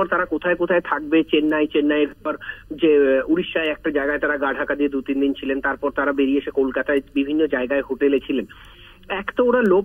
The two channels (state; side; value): identical; both; correlation 1.00